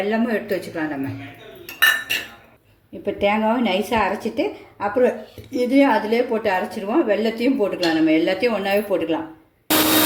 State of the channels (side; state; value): both; identical; correlation 1.00